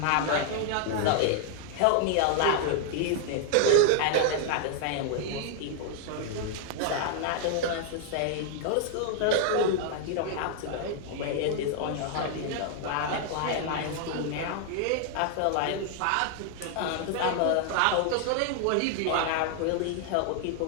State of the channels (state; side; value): different; both; correlation 0.00